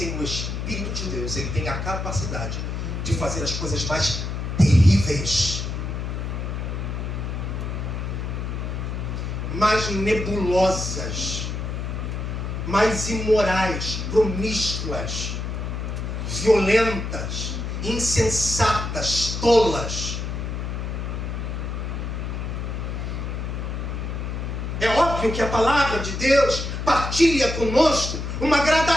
o Espírito de Deus, ele tem a capacidade de fazer as coisas mais terríveis, mais nebulosas, mais imorais, promíscuas, violentas, insensatas, tolas. É óbvio que a palavra de Deus partilha conosco uma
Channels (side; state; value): left; noise; hum, 4 dB below the sound